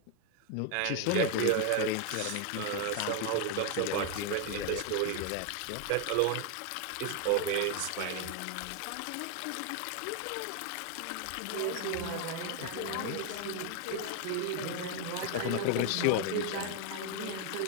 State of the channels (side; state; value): both; different; correlation 0.01